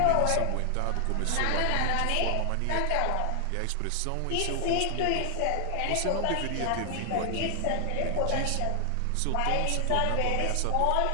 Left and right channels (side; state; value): both; different; correlation 0.00